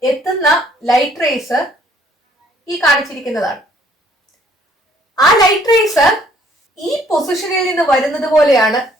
എത്തുന്ന ലൈറ്റ് റേസ് ഈ കാണിച്ചിരിക്കുന്നതാണ്. ആ ലൈറ്റ് റേസ് ഈ പൊസിഷനിൽ നിന്ന് വരുന്നത് പോലെയാണ്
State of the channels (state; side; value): normal; both; correlation 0.62